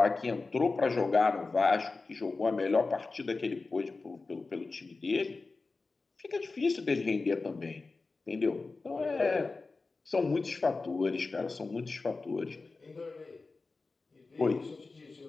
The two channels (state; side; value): quieter; right; 3.8 dB